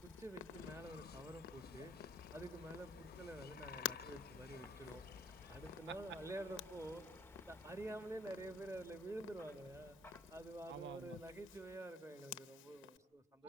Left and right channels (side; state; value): both; normal; correlation 0.60